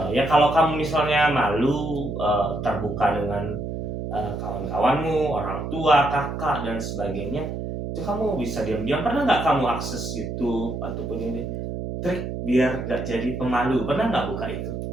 Ya kalau kamu misalnya malu terbuka dengan kawan-kawanmu, orang tua, kakak dan sebagainya, itu kamu bisa diam-diam. Pernah nggak kamu akses YouTube ataupun ini trik biar nggak jadi pemalu? Pernah nggak buka itu?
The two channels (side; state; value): right; noise; hum, 5 dB below the sound